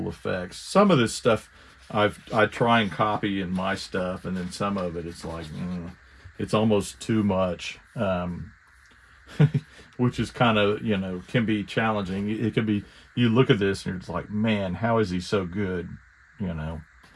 effects. Some of this stuff I try and copy in my stuff, and then some of it, it's like, it's almost too much. Which is kind of, can be challenging. It can be, you look at this and it's like, man, how is he so good?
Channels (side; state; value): both; identical; correlation 1.00